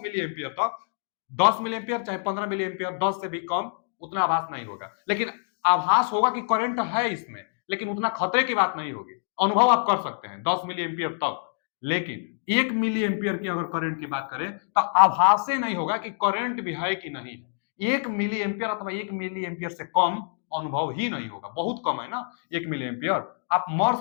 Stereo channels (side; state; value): right; silent; digital silence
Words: मिली एम्पियर तक। 10 मिली एम्पियर चाहे 15 मिली एम्पियर, 10 से भी कम उतना आभास नहीं होगा, लेकिन आभास होगा कि करंट है इसमें, लेकिन उतना खतरे की बात नहीं होगी। अनुभव आप कर सकते हैं 10 मिली एम्पियर तक। लेकिन 1 मिली एम्पियर की अगर करंट की बात करें तो आभास ही नहीं होगा कि करंट भी है कि नहीं। 1 मिली एम्पियर अथवा 1 मिली एम्पियर से कम अनुभव ही नहीं होगा। बहुत कम है ना 1 मिली एम्पियर। आप मर